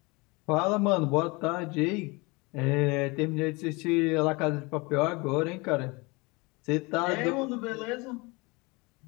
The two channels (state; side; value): quieter; right; 26.3 dB